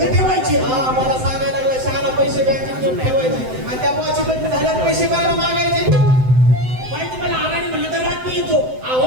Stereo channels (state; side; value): late; left; 7.8 ms